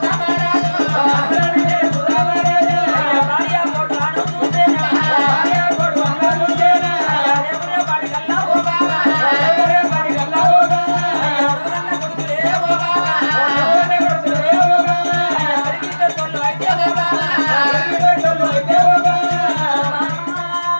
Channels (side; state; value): both; inverted; correlation -1.00